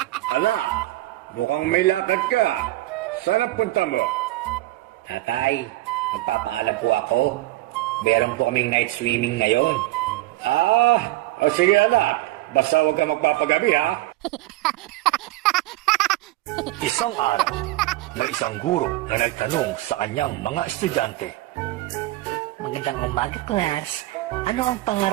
Anak, mukhang may lakad ka. Saan ang punta mo? Tatay, magpapaalam po ako. Meron po kaming night swimming ngayon. Sige anak. Basta huwag ka magpapagabi ha. Isang araw, may isang guro na nagtanong sa kanyang mga estudyante. Magandang umaga, class. Ano ang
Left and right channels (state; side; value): quieter; left; 17.8 dB